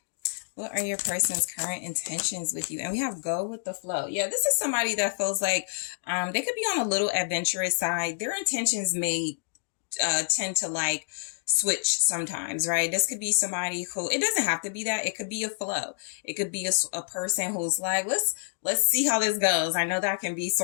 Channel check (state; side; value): silent; right; digital silence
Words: What are your person's current intentions with you? And we have go with the flow. Yeah, this is somebody that feels like they could be on a little adventurous side. Their intentions may tend to like switch sometimes, right? This could be somebody who, it doesn't have to be that. It could be a flow. It could be a person who's like, let's see how this goes. I know that can be